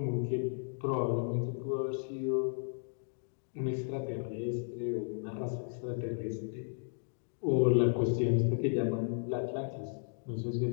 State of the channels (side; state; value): right; silent; digital silence